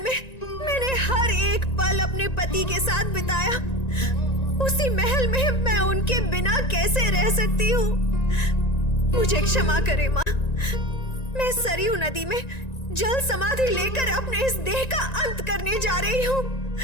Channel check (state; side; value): late; right; 1.9 ms